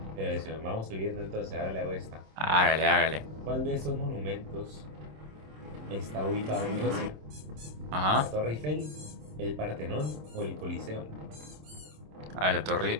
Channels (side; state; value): left; late; 26 ms